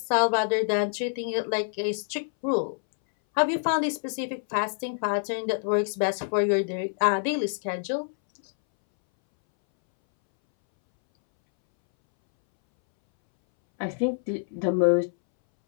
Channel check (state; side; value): silent; right; 61 dB below the other